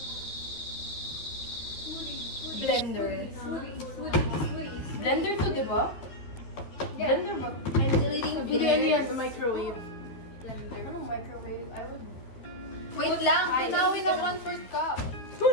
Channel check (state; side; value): late; right; 12 ms